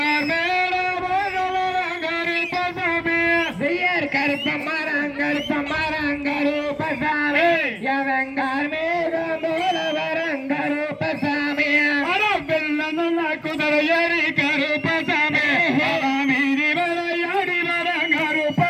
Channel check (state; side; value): identical; both; correlation 1.00